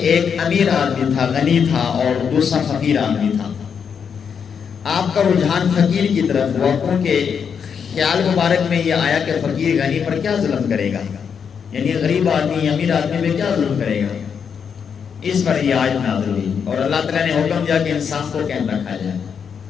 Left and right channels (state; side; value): quieter; right; 6.9 dB